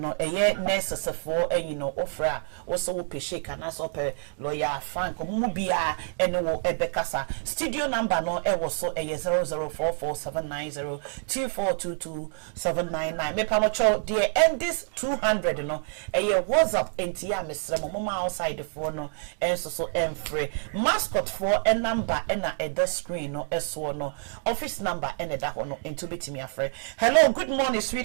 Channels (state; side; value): silent; left; 60 dB below the other